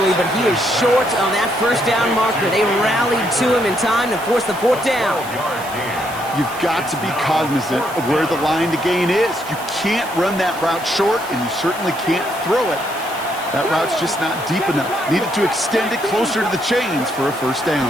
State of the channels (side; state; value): right; noise; hiss, 16 dB below the sound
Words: but he is short of that first down marker. They rallied to him in time to force the fourth down. You've got to be cognizant of where the line to gain is. You can't run that route short, and you certainly can't throw it. That route's just not deep enough. Needed to extend it closer to the chains for a first